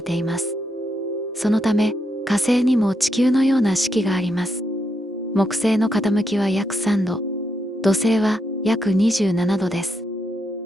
ています。そのため、火星にも地球のような四季があります。木星の傾きは約3度、土星は約27度です。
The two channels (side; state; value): both; normal; correlation 0.81